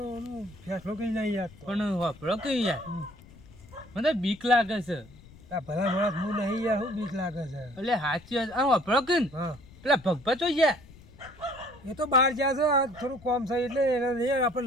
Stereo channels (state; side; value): noise; left; rumble, 22 dB below the sound